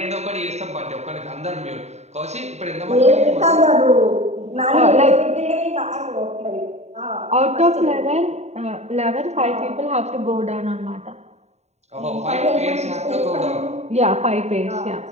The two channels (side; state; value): left; late; 0.32 ms